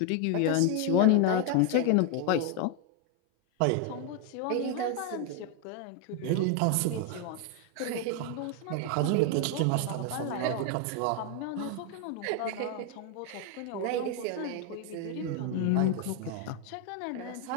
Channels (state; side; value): different; both; correlation 0.01